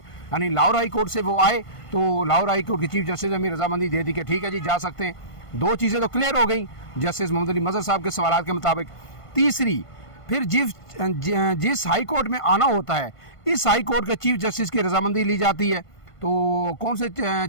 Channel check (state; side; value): late; right; 1.5 ms